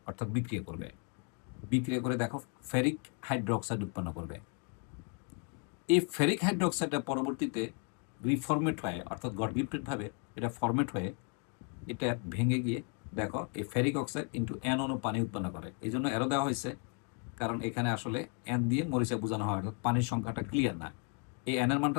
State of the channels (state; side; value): quieter; right; 39.5 dB